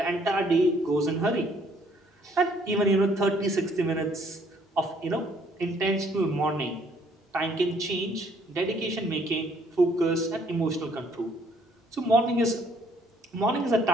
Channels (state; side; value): normal; both; correlation 0.64